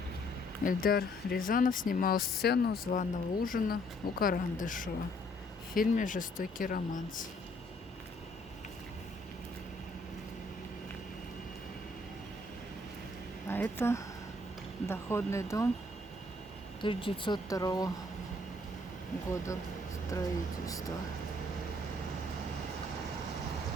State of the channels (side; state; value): both; normal; correlation 0.65